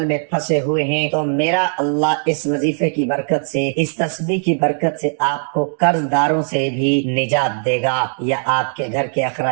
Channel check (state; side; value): silent; left; digital silence